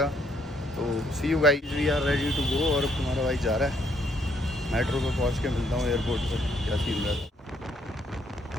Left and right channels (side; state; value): both; normal; correlation 0.70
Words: तो see you guys, we are ready to go. और अब तुम्हारा भाई जा रहा है। मेट्रो पे पहुँच के मिलता हूँ एयरपोर्ट पर, क्या सीन रहता है।